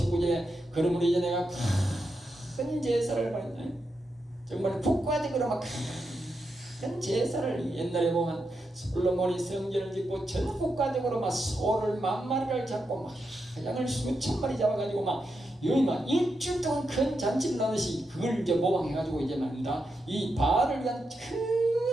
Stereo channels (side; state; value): both; normal; correlation 0.85